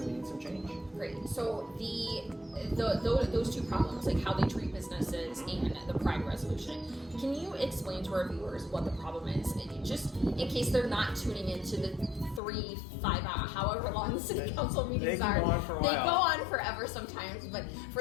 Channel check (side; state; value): right; drops out; at 12.4 s